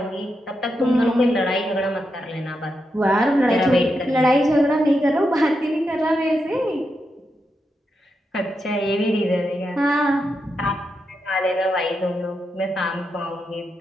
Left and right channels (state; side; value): normal; both; correlation 0.85